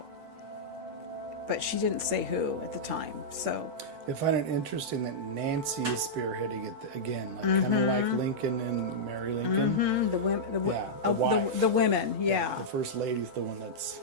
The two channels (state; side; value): late; left; 8.1 ms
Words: But she didn't say who at the time. So I find it interesting that Nancy is spearheading it again, like kind of like Lincoln and Mary Lincoln. the women, wife. the women, yeah. The first lady's the one that's...